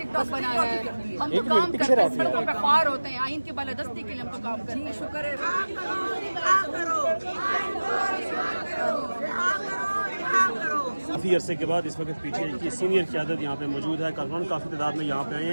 बनाना है। हम तो काम करते हैं, सड़कों पे ख्वार होते हैं, आइन की बालादस्ती के लिए हम तो काम करते हैं। शुक्र है काफ़ी अरसे के बाद इस वक्त पीछे की सीनियर क़यादत यहाँ पे मौजूद है। कारकुनान काफ़ी तादाद में यहाँ पे आए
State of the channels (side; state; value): both; inverted; correlation -1.00